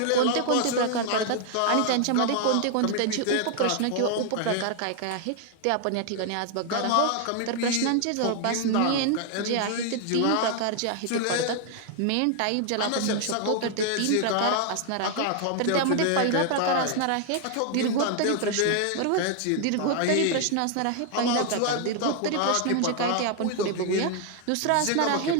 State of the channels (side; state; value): both; different; correlation 0.00